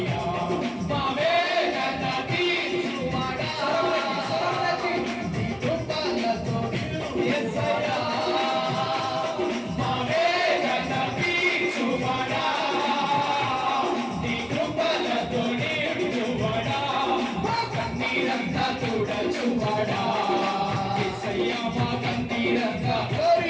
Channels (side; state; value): both; identical; correlation 1.00